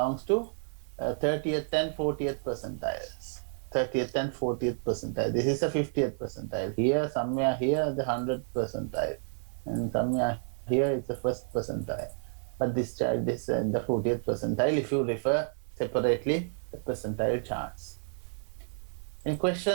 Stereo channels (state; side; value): silent; left; digital silence